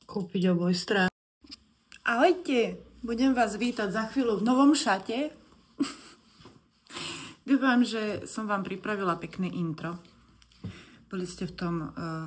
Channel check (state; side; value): identical; both; correlation 1.00